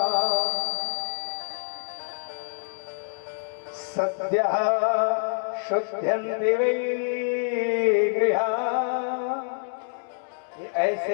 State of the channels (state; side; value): silent; right; digital silence